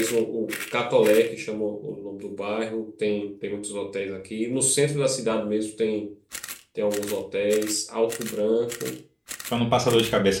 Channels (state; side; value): identical; both; correlation 1.00